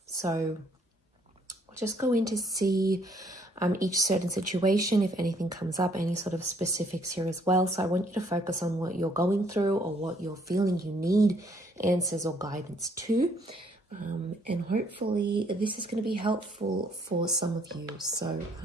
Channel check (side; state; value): both; normal; correlation 0.65